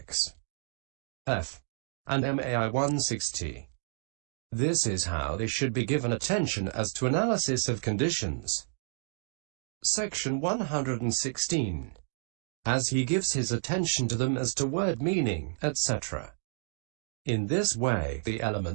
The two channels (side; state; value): left; silent; digital silence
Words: F. and MAI 160. This is how they should be given attention as to analysis of conditions. Section 116. As he gives his attention to them as to word meaning, etc. In this way, the